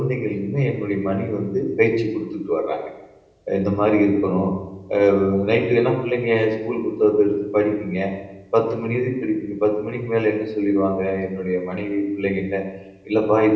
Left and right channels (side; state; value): both; identical; correlation 1.00